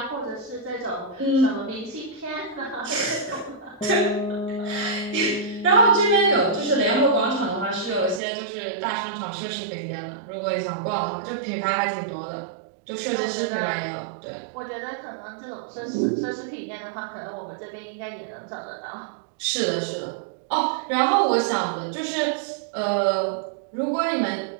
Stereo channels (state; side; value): drops out; left; at 8.2 s